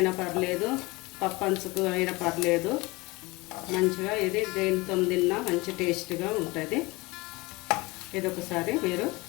పర్లేదు, పప్పంచుకు అయినా పర్లేదు. మంచిగా ఇది దేనితో తిన్నా మంచి టేస్ట్గా ఉంటుంది. ఇది ఒకసారి మీరు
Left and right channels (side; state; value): right; quieter; 23.2 dB